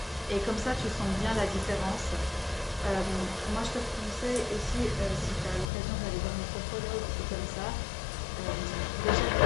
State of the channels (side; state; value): right; drops out; at 5.7 s